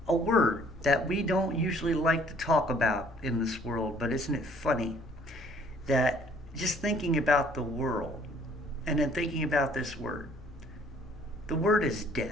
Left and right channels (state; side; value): normal; both; correlation 0.59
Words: a word that we don't usually like to talk about in this world. But isn't it funny that just thinking about the world and then thinking about this word? The word is